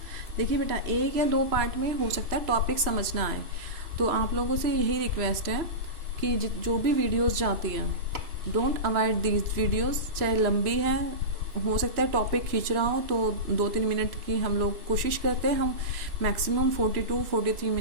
देखिए बेटा, एक या दो पार्ट में हो सकता है टॉपिक समझना आए, तो आप लोगों से यही रिक्वेस्ट है कि जो भी वीडियोस जाती हैं डोंट अवॉइड दीज वीडियोस. चाहे लंबी है, हो सकता है टॉपिक खींच रहा हो, तो 2-3 मिनट की हम लोग कोशिश करते हैं, हम मैक्सिमम 42-43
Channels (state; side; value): late; left; 3.0 ms